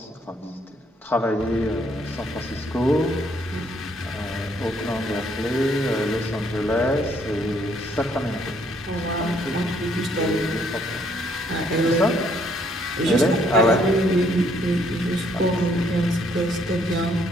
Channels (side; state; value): both; normal; correlation 0.68